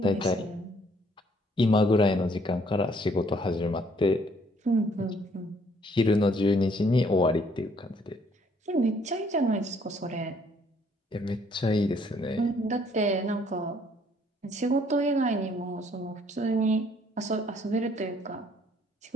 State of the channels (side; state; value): both; normal; correlation 0.64